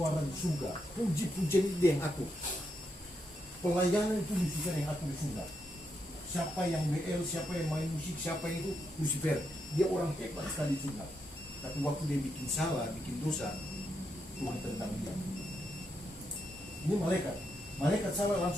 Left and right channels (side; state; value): both; normal; correlation 0.82